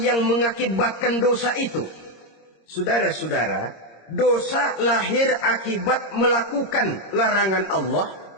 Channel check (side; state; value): right; late; 26 ms